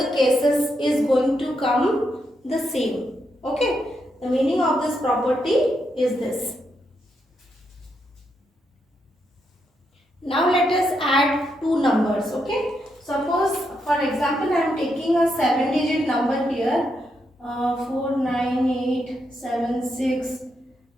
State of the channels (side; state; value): both; normal; correlation 0.81